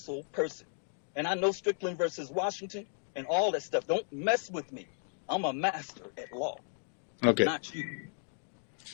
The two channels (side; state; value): right; silent; 55 dB below the other